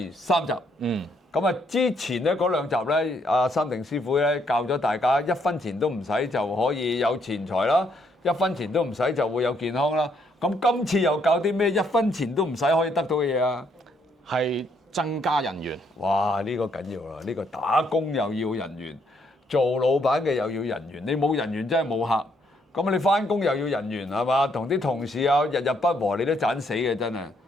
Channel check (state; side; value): normal; both; correlation 0.72